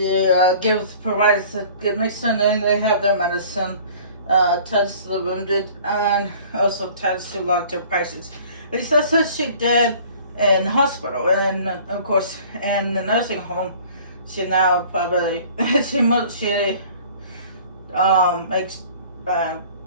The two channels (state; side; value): inverted; both; correlation -0.49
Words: provides a good medicine, and they have their medicine. Tends to the wounded, and also tends to long-term patients. At least that's what she did in the hospital, and of course in the nursing home. She now probably she makes